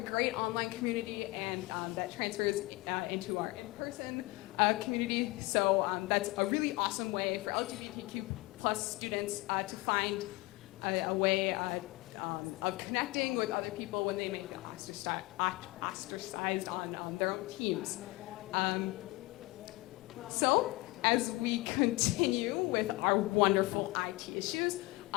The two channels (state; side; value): quieter; right; 21.7 dB